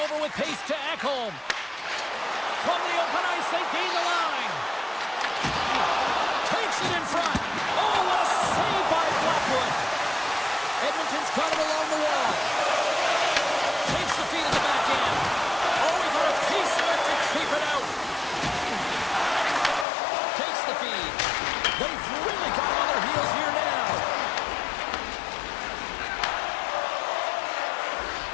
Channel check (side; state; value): right; drops out; at 19.9 s